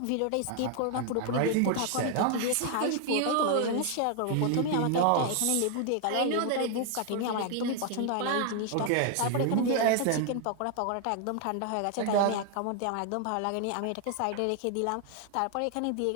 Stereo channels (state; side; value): different; both; correlation 0.00